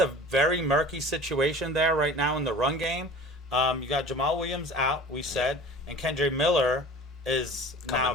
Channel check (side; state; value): both; normal; correlation 0.41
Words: very murky situation there right now in the run game. You got Jamal Williams out, we said, and Kendre Miller is now